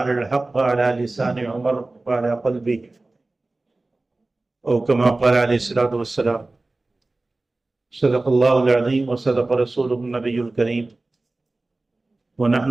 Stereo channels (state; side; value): quieter; left; 3.1 dB